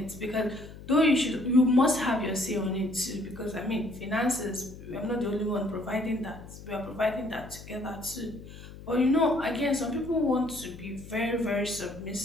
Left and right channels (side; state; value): left; noise; hum, 15 dB below the sound